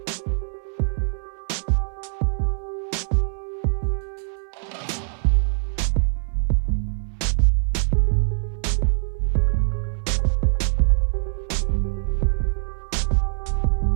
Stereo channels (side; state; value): left; silent; digital silence